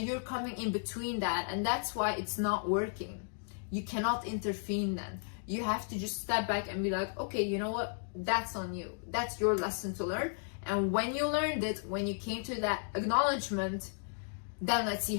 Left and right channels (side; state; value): right; silent; digital silence